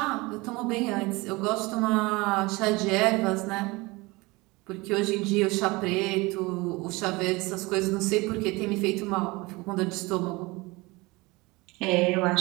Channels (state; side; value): quieter; left; 23.5 dB